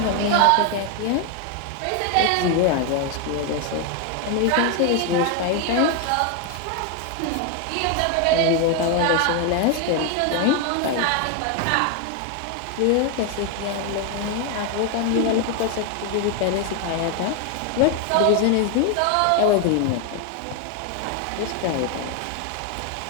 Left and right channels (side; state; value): both; different; correlation 0.01